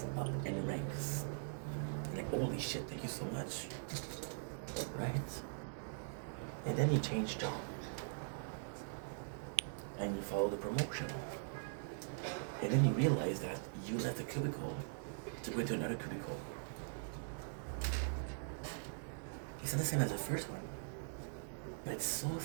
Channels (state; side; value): silent; left; digital silence